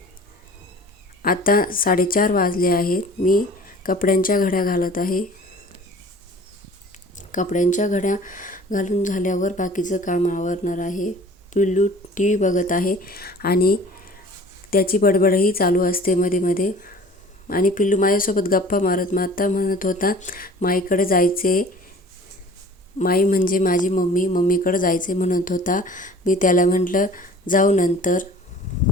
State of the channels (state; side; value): normal; both; correlation 0.46